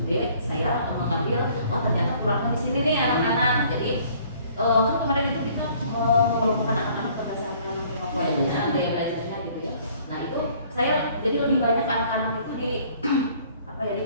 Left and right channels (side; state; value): both; inverted; correlation -0.57